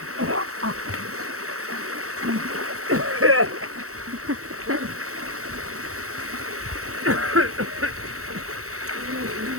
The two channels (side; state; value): left; late; 0.64 ms